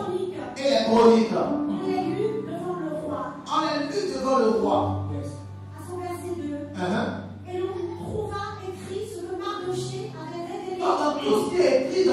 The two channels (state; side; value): identical; both; correlation 1.00